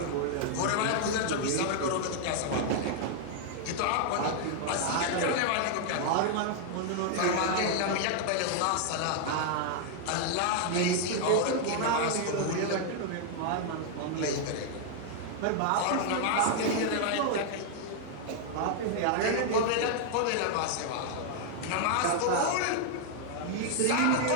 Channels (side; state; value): both; different; correlation 0.00